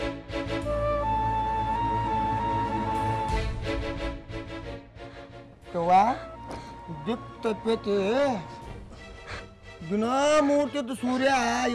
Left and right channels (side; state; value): both; identical; correlation 1.00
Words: ದಿಕ್ ತಪ್ಪೈತಿ. ದಿನ ಮೂರ್ತಿದ್ದು ಸೂರ್ಯ